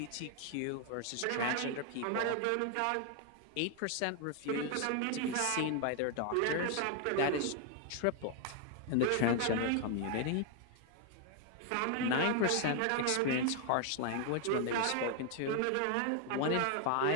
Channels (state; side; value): different; both; correlation 0.00